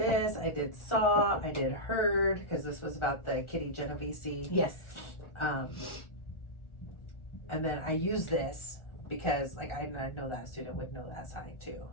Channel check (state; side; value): late; right; 1.4 ms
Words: I did saw, I did heard, because this was about the Kitty Genovese. Yes. And then I use this because, like, I know that student would know that sign too.